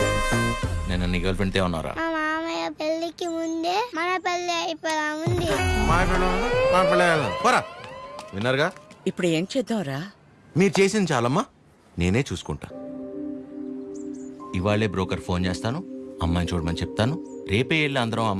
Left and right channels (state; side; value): identical; both; correlation 1.00